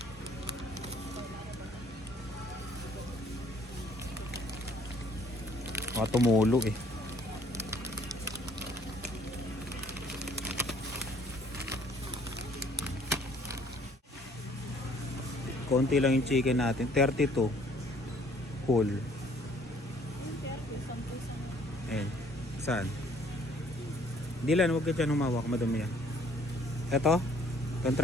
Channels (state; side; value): normal; both; correlation 0.59